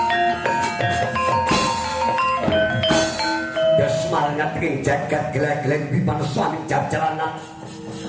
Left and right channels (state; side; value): identical; both; correlation 1.00